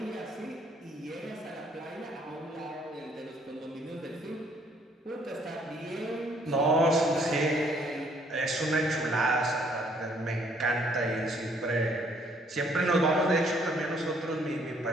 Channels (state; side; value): normal; both; correlation 0.64